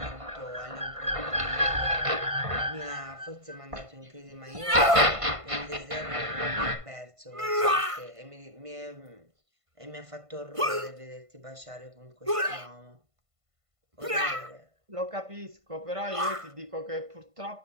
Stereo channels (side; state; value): left; late; 1.5 ms